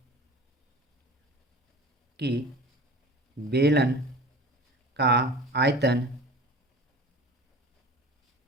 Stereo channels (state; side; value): normal; both; correlation 0.39